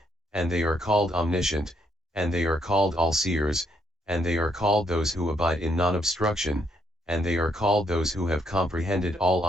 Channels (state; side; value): normal; both; correlation 0.73